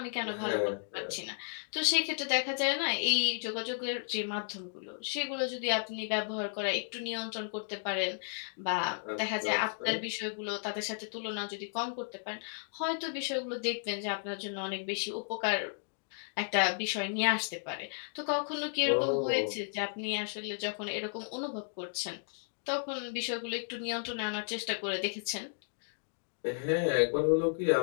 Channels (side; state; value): right; silent; digital silence